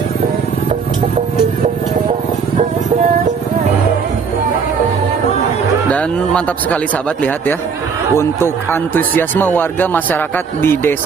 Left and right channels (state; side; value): quieter; left; 5.9 dB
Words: Dan mantap sekali sahabat, lihat ya, untuk antusiasme warga masyarakat di